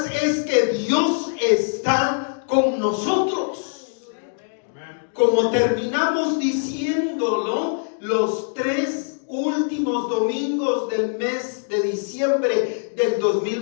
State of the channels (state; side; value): silent; right; digital silence